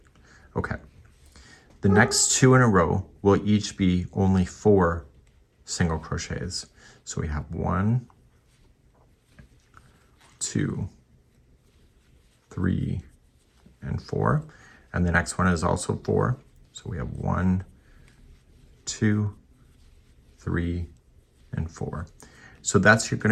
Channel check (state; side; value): identical; both; correlation 1.00